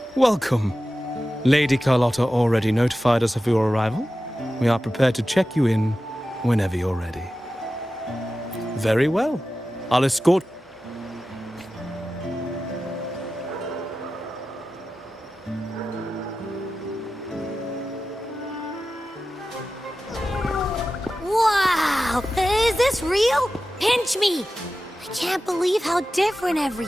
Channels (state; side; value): normal; both; correlation 0.93